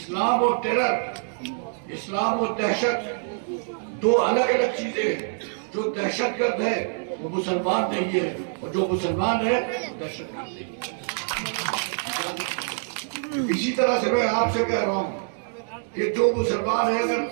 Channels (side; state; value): left; silent; digital silence